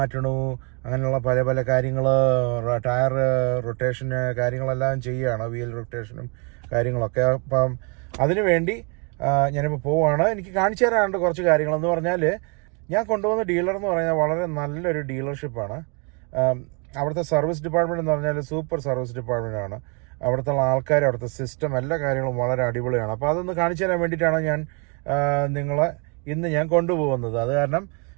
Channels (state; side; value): quieter; left; 34.7 dB